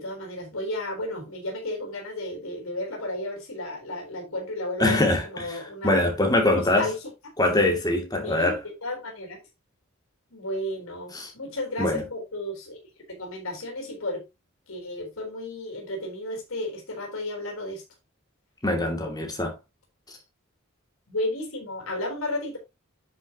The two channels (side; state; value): both; normal; correlation 0.18